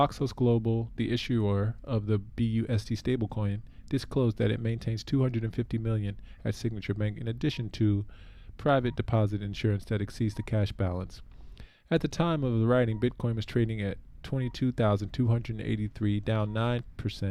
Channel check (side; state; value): both; identical; correlation 1.00